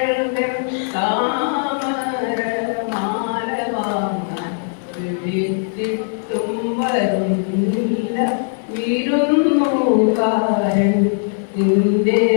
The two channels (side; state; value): right; silent; digital silence